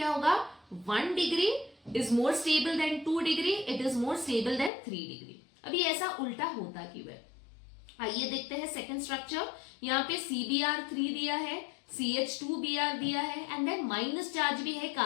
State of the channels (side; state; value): right; drops out; at 4.7 s